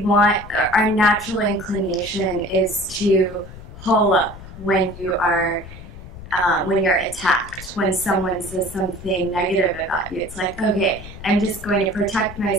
natural inclination is to hole up when you're attacked, when someone says something negative about you. It's like, okay, I'm just going to protect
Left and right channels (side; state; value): left; noise; rumble, 15 dB below the sound